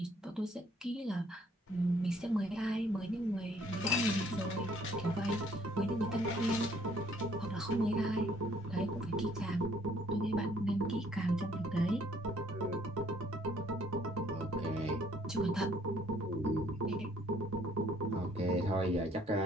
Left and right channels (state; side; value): normal; both; correlation 0.62